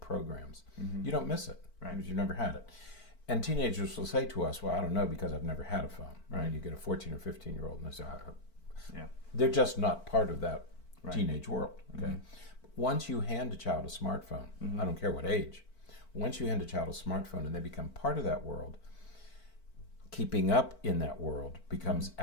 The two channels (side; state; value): right; late; 4.5 ms